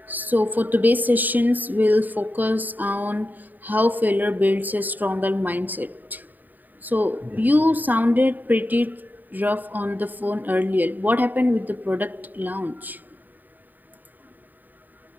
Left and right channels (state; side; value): late; left; 0.086 ms